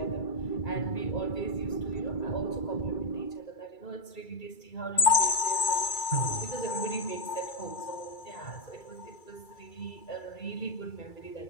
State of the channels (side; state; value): right; late; 2.3 ms